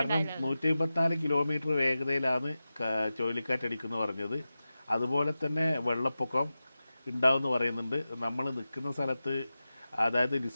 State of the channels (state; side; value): inverted; both; correlation -0.94